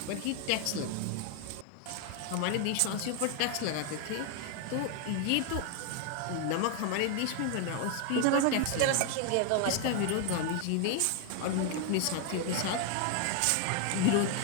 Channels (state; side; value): different; both; correlation 0.01